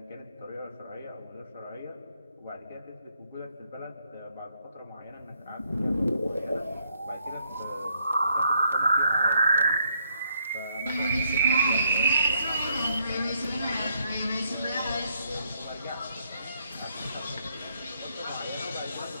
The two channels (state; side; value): inverted; both; correlation -0.73